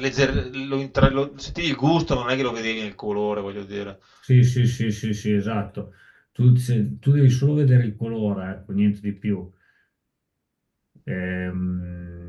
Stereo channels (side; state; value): both; identical; correlation 1.00